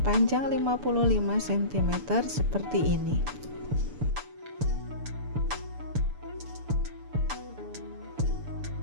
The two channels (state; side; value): late; left; 6.9 ms